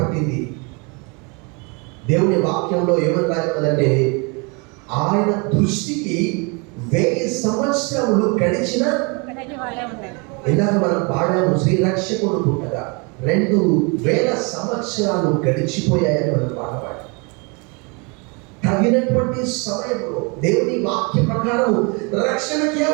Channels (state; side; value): quieter; left; 31.5 dB